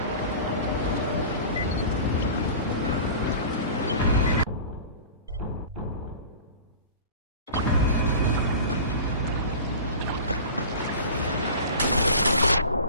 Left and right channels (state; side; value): inverted; both; correlation -0.36